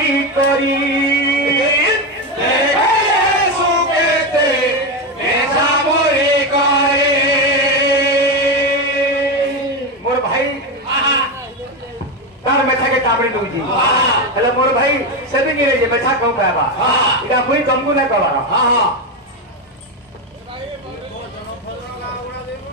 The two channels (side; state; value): both; normal; correlation 0.12